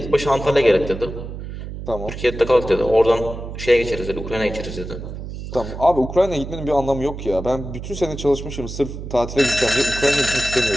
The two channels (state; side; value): noise; right; hum, 9 dB below the sound